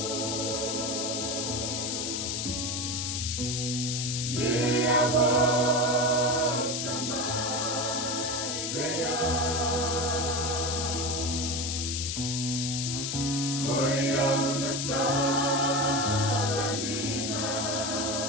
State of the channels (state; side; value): noise; left; hiss, 2 dB below the sound